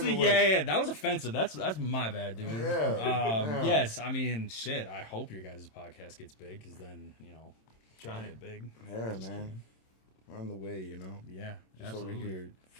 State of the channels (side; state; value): right; late; 27 ms